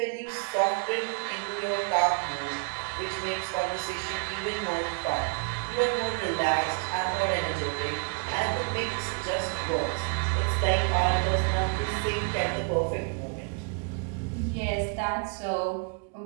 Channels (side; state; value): left; quieter; 35.1 dB